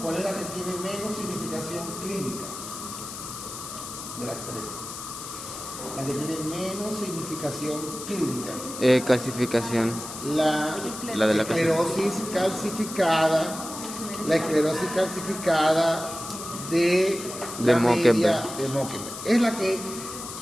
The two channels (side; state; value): left; noise; hiss, 10 dB below the sound